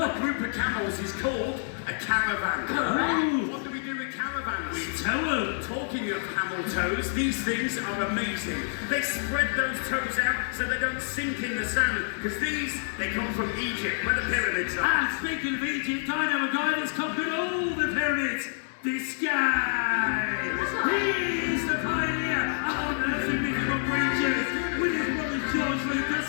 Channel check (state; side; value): silent; right; 59 dB below the other